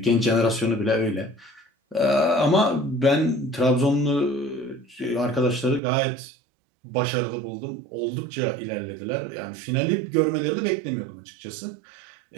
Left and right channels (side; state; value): left; drops out; at 5.8 s